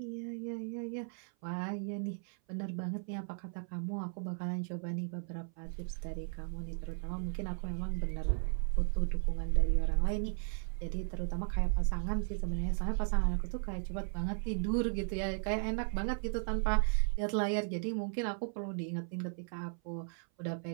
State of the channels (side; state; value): left; silent; 54 dB below the other